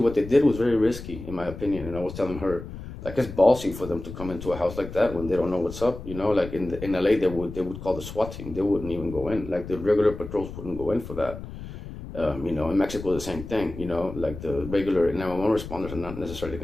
they did was very risky, in my opinion. And I was telling her, it's ballsy for them to come into a house like that when they don't know what's up. In LA, they would call the SWAT team. They wouldn't even go in. The regular patrols wouldn't go in for that. In Mexico, the same thing. The regular 911 responders are not necessarily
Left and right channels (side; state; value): left; noise; rumble, 11 dB below the sound